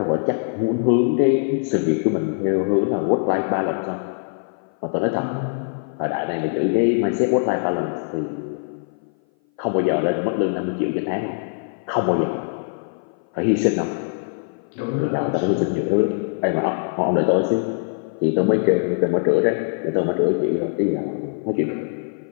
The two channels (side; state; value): right; silent; 58 dB below the other